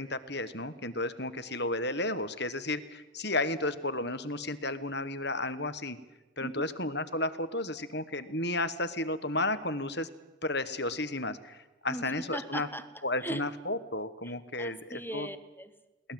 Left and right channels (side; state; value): both; normal; correlation -0.04